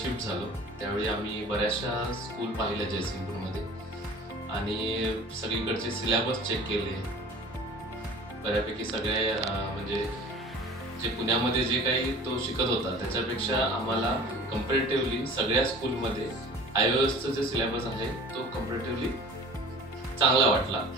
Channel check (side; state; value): both; normal; correlation 0.43